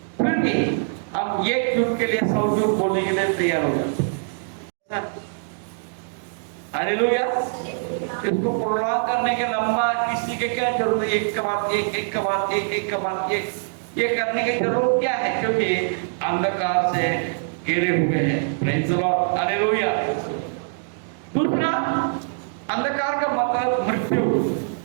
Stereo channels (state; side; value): silent; left; digital silence